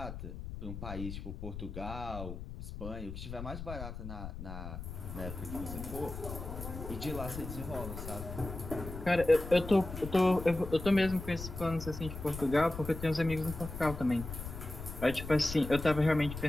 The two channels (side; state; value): left; noise; rumble, 9 dB below the sound